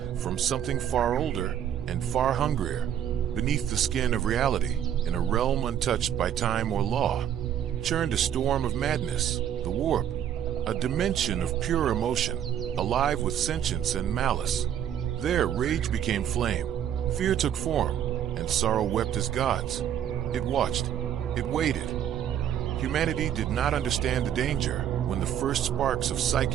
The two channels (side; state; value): left; quieter; 9.9 dB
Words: from something far older and far hungrier. Beneath the skin of reality, in a realm untouched by time or law, churned a storm of madness, the warp, a dimension of pure emotion, alive with sentience and malice. There rage became flame, fear took form, and sorrow wept as gods. It watched, it waited. Humanity did not understand the danger when the first sparks of